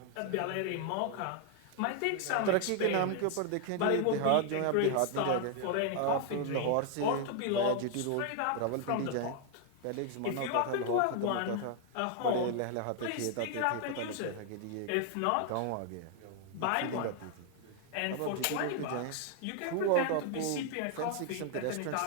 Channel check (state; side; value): different; both; correlation 0.00